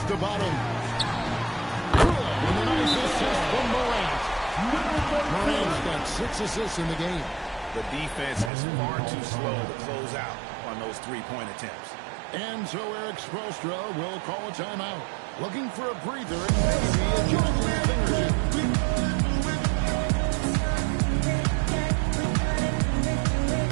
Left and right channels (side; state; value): left; drops out; at 8.5 s